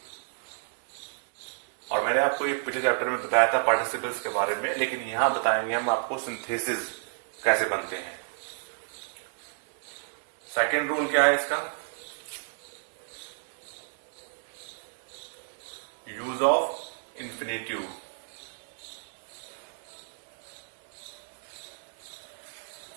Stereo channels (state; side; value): silent; left; digital silence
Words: और मैंने आपको ये पिछले चैप्टर में बताया था पार्टिसिपल्स के बारे में, लेकिन यहां बताएंगे हम आपको सिंथेसिस कैसे बनते हैं। सेकेंड रूल क्या है इसका, यूज ऑफ इंफिनिटिव।